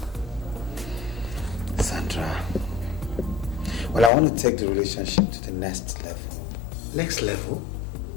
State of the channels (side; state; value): right; drops out; at 4.1 s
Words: Sandra. Well, I want to take the relationship to the next level. Next level?